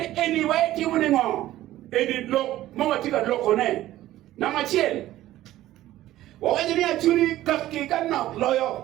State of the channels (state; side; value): quieter; left; 14.7 dB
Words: eni wa ikiru ni ngo eni lo mo tiga lokone na machel wakwanyo ni achuri kaki kanna